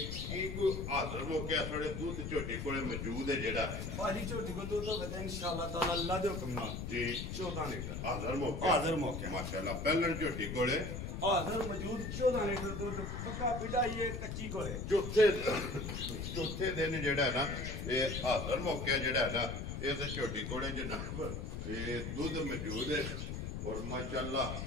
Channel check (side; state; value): left; noise; rumble, 5 dB below the sound